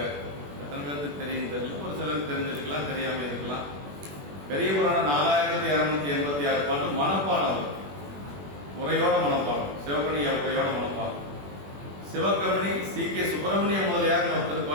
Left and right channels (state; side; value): late; left; 21 ms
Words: எத்தனை பேருக்கு தெரியும் தெரியல, ஒரு சிலருக்கு தெரிஞ்சிருக்கலாம், தெரியாம இருக்கலாம். பெரிய புராணம் 4286 பாட்டு மனப்பாடம், உரையோட மனப்பாடம், சிவகணி உரையோட மனப்பாடம். சிவகமணி சி.கே. சுப்பிரமணிய முதலியார் ஒருத்தர்